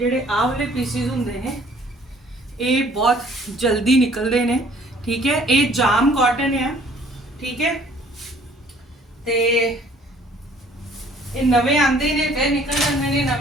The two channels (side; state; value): both; normal; correlation 0.57